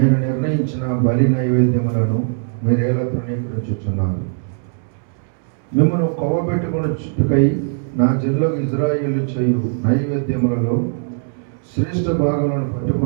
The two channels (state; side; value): silent; left; 66 dB below the other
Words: నిర్ణయించిన బలి నైవేద్యములను మీరేలా తృణీకరించుచున్నారు. మిమ్మల్ని కొవ్వబెట్టుకుని చుట్టుకై నా జిల్లాకు ఇజ్రాయేలు చేయు నైవేద్యములలో శ్రేష్ఠ భాగములను